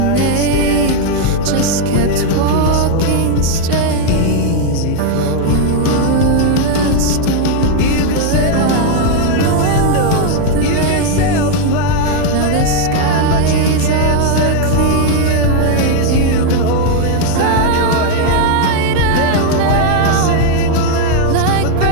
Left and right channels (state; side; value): different; both; correlation 0.00